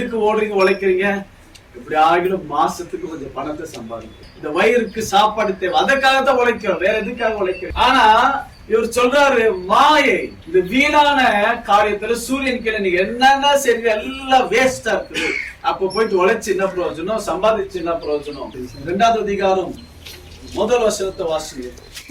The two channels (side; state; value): both; identical; correlation 1.00